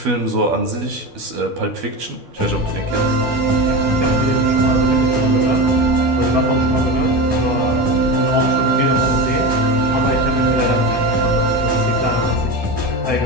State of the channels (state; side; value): late; left; 12 ms